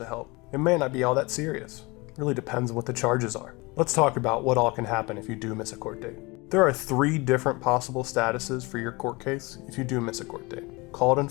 help. It may not be all that serious. It really depends on what the charges are. Let's talk about what all can happen if you do miss a court date. There are 3 different possible statuses for your court case if you do miss a court date. Called and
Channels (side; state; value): right; quieter; 25.3 dB